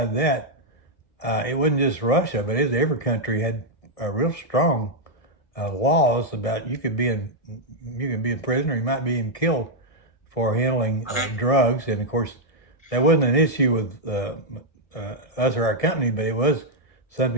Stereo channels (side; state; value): right; late; 1.6 ms